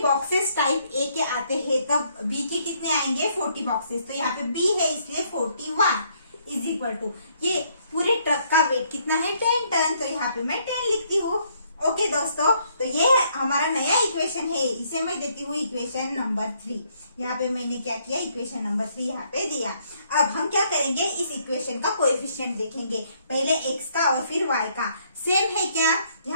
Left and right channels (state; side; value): inverted; both; correlation -0.69